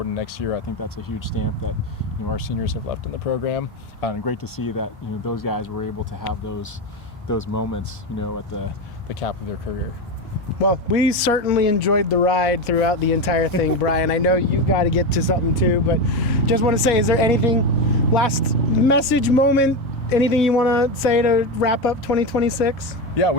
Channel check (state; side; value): normal; both; correlation 0.15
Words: in next year. I think that's a huge stamp that our seniors have left in the program, and great to see that those guys were able to have those moments at the cap of their career. Well, we certainly enjoyed the ride throughout the entire thing, Brian. I know you've got to get to something too, but just want to say, is there anything, last message, moment, anything you want to say to wrap up 2026? Yeah,